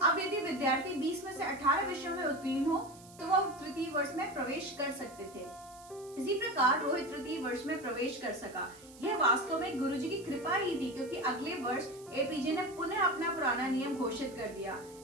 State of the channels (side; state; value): right; noise; hiss, 21 dB below the sound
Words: अब यदि विद्यार्थी 20 में से 18 विषयों में उत्तीर्ण हो तो वह तृतीय वर्ष में प्रवेश कर सकते थे। इसी प्रकार रोहित तृतीय वर्ष में प्रवेश कर सका। यह वास्तव में गुरुजी की कृपा ही थी, क्योंकि अगले वर्ष एपीजे ने पुनः अपना पुराना नियम घोषित कर दिया।